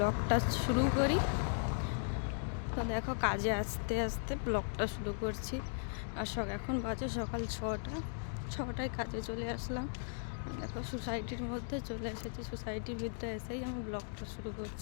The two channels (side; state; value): right; silent; digital silence